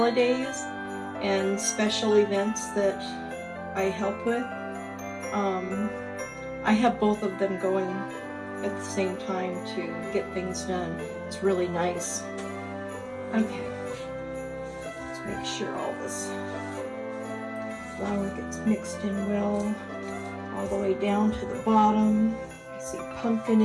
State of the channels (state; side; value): identical; both; correlation 1.00